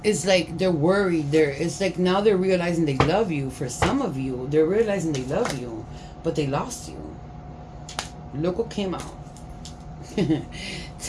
they're worried. It's like now they're realizing they love you. For some of you, they're realizing they love you, but they lost you. Look what came out.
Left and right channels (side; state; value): both; identical; correlation 1.00